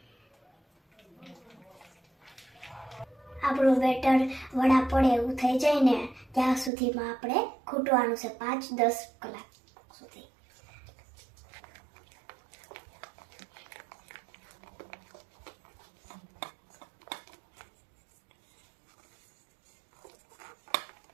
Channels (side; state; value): left; drops out; at 6.7 s